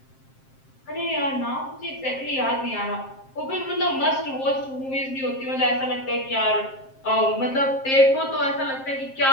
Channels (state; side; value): late; right; 7.5 ms